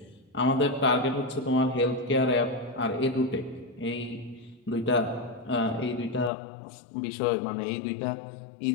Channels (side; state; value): right; drops out; at 6.3 s